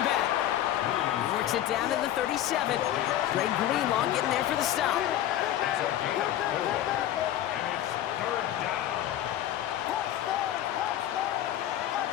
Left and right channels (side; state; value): right; quieter; 12.2 dB